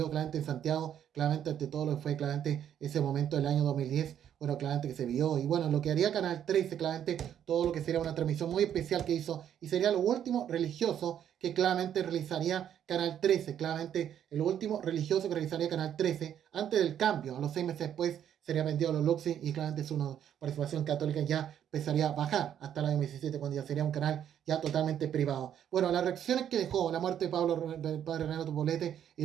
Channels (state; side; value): quieter; left; 9.7 dB